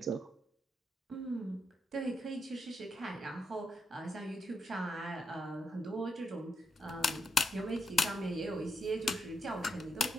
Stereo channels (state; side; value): normal; both; correlation 0.81